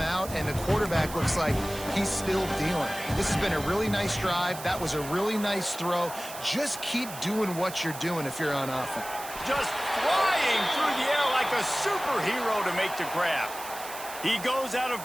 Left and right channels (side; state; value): right; noise; hiss, 12 dB below the sound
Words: out and the quarterback looks like he's still dealing. This has been a really nice drive. That was a really nice throw. Just keep doing what you're doing if you're on offense. Just flying through the air like a superhero to make the grab. He goes out of